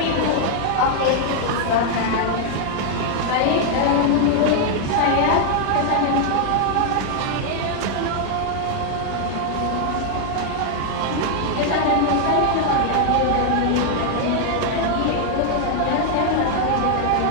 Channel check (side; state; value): both; different; correlation 0.00